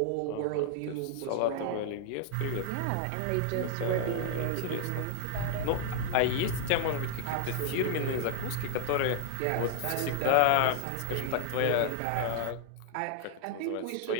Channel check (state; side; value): different; both; correlation 0.00